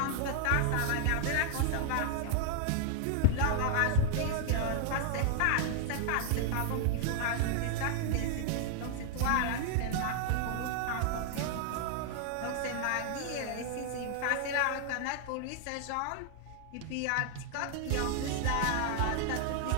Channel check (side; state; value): both; different; correlation 0.00